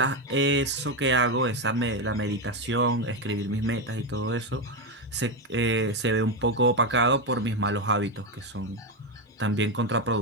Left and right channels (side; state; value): both; normal; correlation 0.09